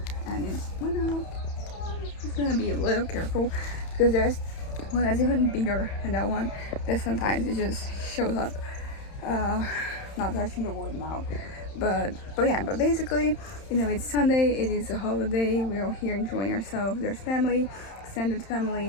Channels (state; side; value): late; right; 31 ms